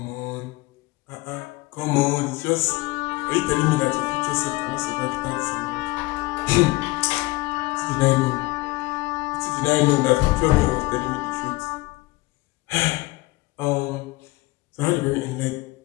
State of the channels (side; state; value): right; quieter; 21.7 dB